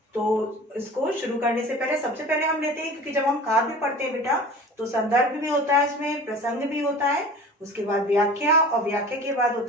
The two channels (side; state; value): both; normal; correlation 0.40